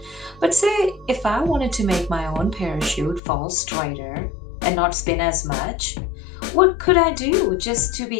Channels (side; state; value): right; drops out; at 3.2 s